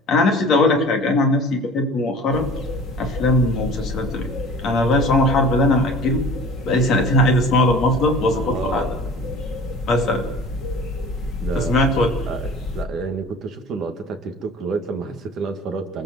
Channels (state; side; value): normal; both; correlation 0.43